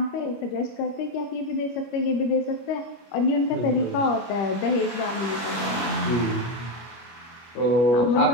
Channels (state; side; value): late; right; 25 ms